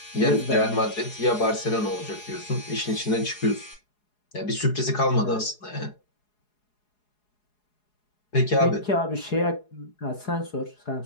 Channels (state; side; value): late; right; 4.8 ms